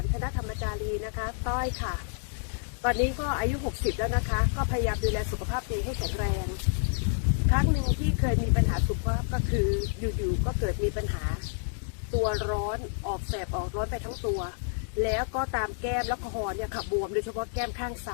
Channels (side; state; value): right; silent; digital silence